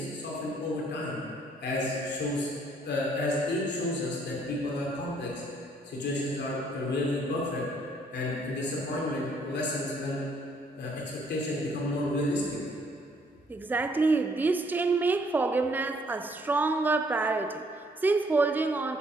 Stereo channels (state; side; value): normal; both; correlation 0.65